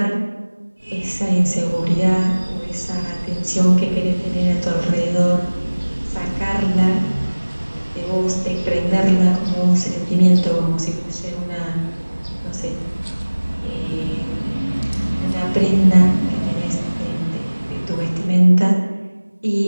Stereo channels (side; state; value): both; inverted; correlation -1.00